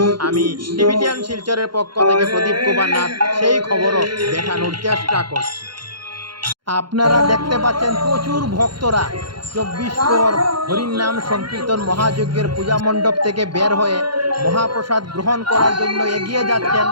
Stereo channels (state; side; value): late; left; 0.72 ms